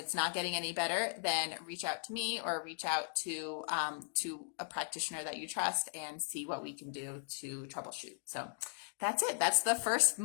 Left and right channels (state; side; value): silent; right; digital silence